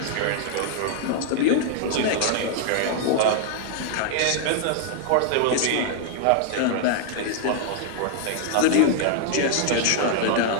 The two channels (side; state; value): both; different; correlation -0.01